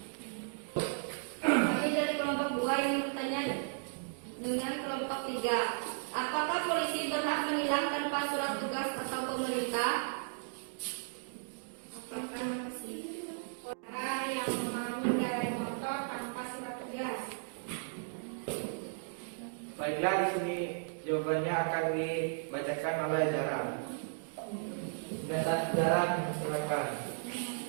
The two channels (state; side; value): silent; left; digital silence